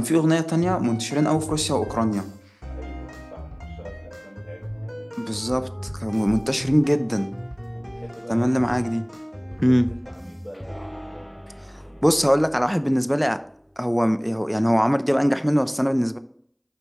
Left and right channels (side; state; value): both; identical; correlation 1.00